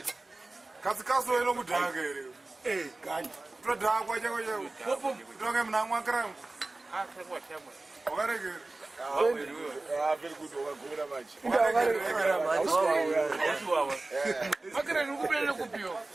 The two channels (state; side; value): quieter; left; 3.1 dB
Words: Kazi ino kudhaka ere. Gani. Todhakwa chako chako. Toke mnamwa kram. Wakareke. Very good wakagura machi. Makere nikupelele kupiwa.